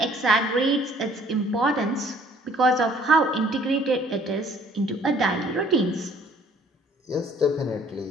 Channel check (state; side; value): normal; both; correlation 0.57